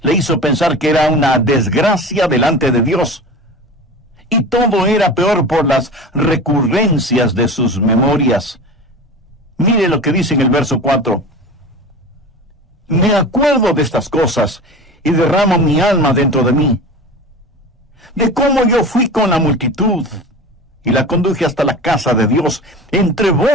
le hizo pensar que era una desgracia delante de Dios. Y todo era peor por las recurrencias de sus memorias. Mire lo que dice en el verso 4. Me acuerdo de estas cosas y derramo mi alma dentro de mí. De cómo yo fui con la multitud y la conduje hasta la casa de Dios, entre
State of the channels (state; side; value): normal; both; correlation 0.33